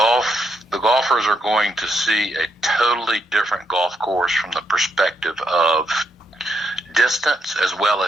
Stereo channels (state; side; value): normal; both; correlation 0.78